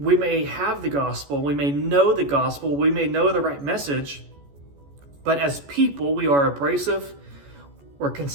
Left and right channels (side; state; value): left; late; 14 ms